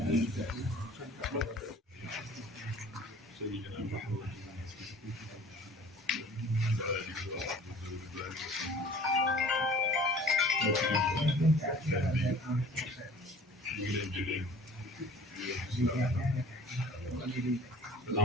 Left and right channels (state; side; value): normal; both; correlation 0.48